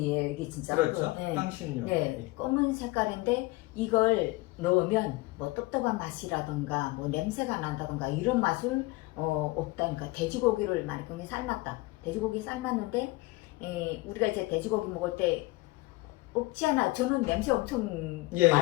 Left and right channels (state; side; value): quieter; right; 21.2 dB